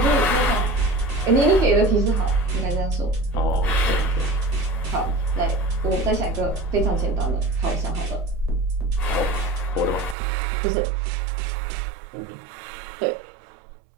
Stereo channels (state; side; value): drops out; left; at 10.2 s